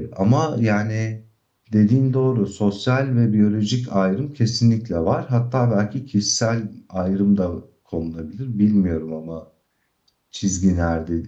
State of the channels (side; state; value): both; identical; correlation 1.00